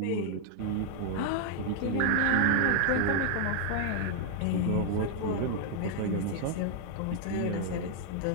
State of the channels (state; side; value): different; both; correlation 0.00